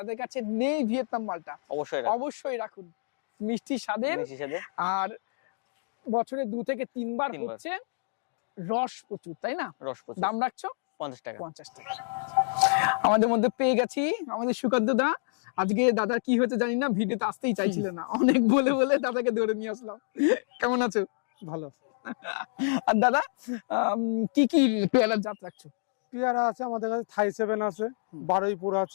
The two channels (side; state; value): right; silent; 59 dB below the other